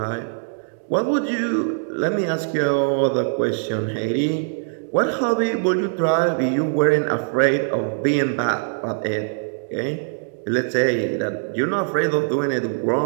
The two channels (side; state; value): left; silent; digital silence